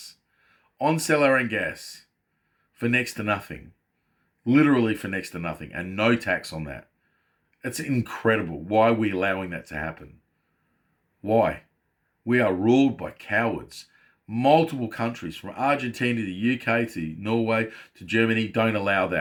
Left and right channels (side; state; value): both; identical; correlation 1.00